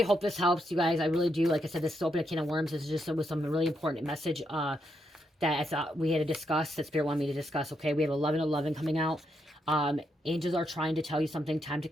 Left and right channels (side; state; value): both; normal; correlation 0.80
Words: hope this helps you guys. I really do. Like I said, this is open a can of worms. This is just with some really important message that I thought we had to discuss, that Spirit wanted me to discuss. Okay, we have 11:11 coming out. Angels are trying to tell you something. Time to